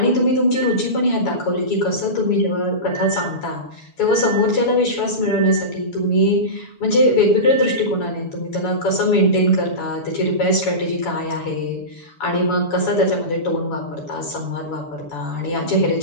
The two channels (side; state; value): right; late; 7.0 ms